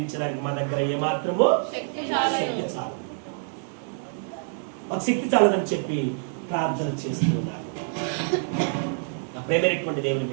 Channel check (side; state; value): left; silent; digital silence